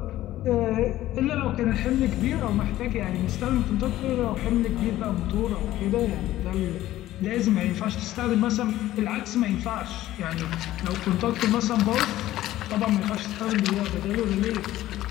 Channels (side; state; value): right; quieter; 14.6 dB